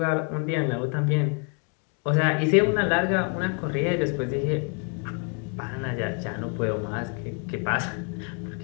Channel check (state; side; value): quieter; right; 39.9 dB